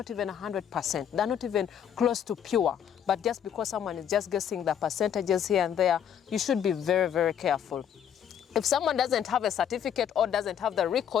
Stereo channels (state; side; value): quieter; right; 8.9 dB